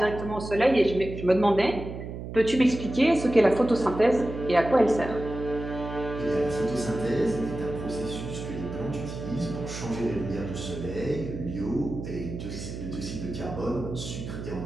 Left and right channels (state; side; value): noise; right; hum, 8 dB below the sound